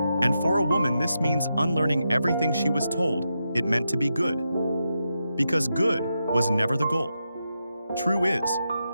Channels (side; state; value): both; inverted; correlation -0.86